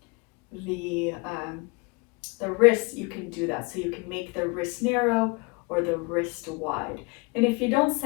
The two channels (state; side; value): quieter; right; 28.8 dB